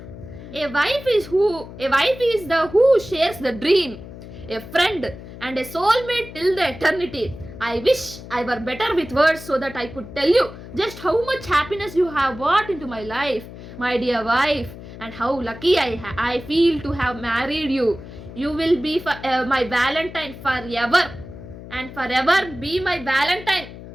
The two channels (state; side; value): noise; left; hum, 14 dB below the sound